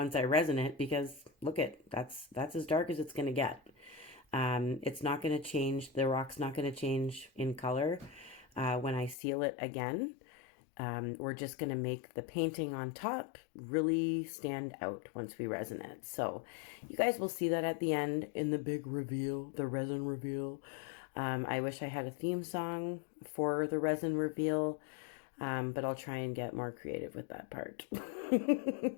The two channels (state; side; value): drops out; right; at 9.2 s